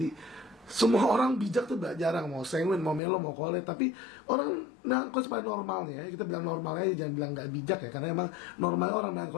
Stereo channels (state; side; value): drops out; right; at 3.0 s